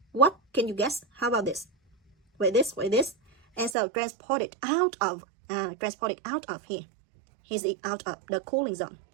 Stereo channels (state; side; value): drops out; left; at 3.8 s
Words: what can you guess? How about this? With this. And so transported out of here. Here's it out of the cooling zone.